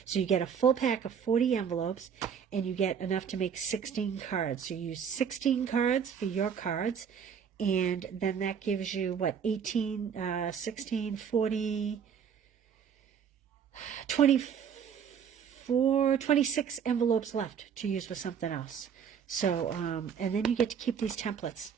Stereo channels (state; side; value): quieter; left; 7.5 dB